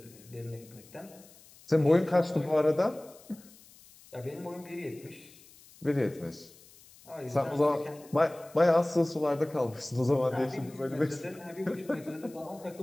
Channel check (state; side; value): noise; left; hiss, 24 dB below the sound